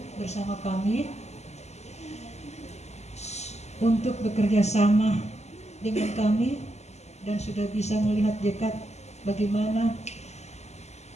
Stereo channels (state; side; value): late; right; 0.32 ms